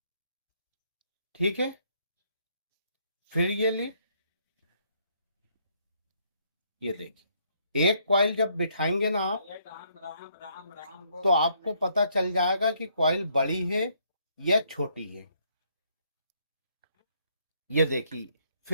ठीक है। फिर ये ली, ये देखिए, एक कॉइल जब बिठाएंगे ना आप, तो आपको पता चल जाएगा कि कॉइल बड़ी है या छोटी है। ये देखिए,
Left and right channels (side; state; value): both; inverted; correlation -0.70